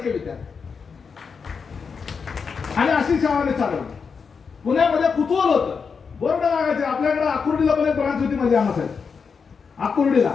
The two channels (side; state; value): right; quieter; 5.7 dB